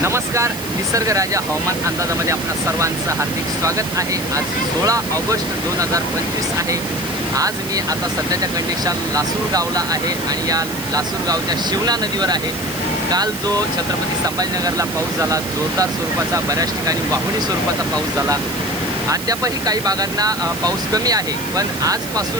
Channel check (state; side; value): noise; right; hiss, 11 dB below the sound